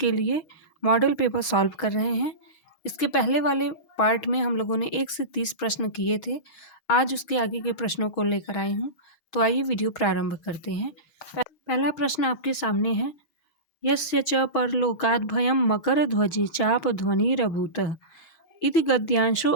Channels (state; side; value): late; right; 6.2 ms